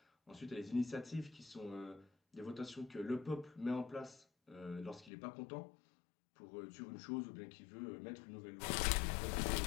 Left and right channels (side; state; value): right; drops out; at 5.1 s